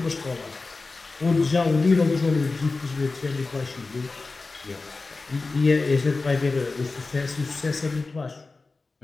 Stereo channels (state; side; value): quieter; right; 3.7 dB